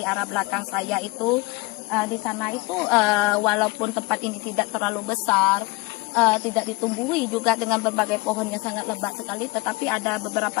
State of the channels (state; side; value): quieter; right; 23.6 dB